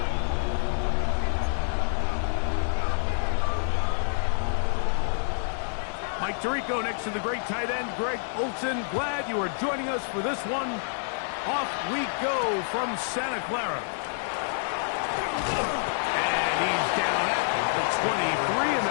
Mike Tirico next to the great tight end, Greg Olsen. Glad you are joining us for this one. Off we go from Santa Clara. And he's down at the 23, and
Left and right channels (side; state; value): right; silent; digital silence